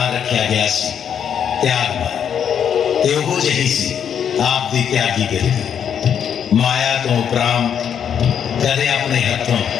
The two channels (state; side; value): quieter; right; 8.3 dB